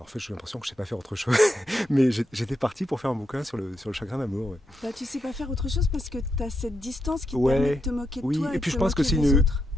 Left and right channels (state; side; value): normal; both; correlation 0.83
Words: en fait, j'ai l'impression que je sais pas faire autre chose. Mais j'étais parti pour faire un bouquin sur le chagrin d'amour. Ouais. Bah, tu sais pas faire autre chose parce que tu as cette distance qui te permet de Ouais, te moquer de oui, toi et et de puis te moquer des autres.